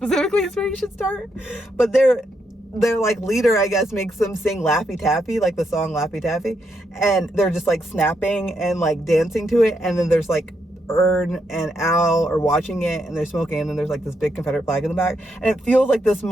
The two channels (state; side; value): normal; both; correlation 0.80